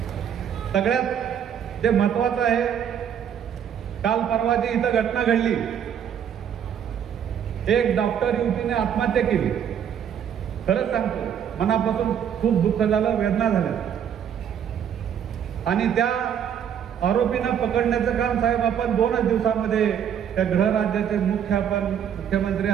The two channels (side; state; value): left; quieter; 8.8 dB